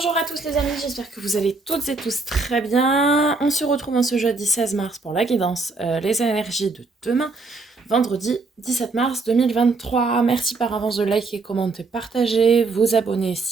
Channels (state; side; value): quieter; left; 3.8 dB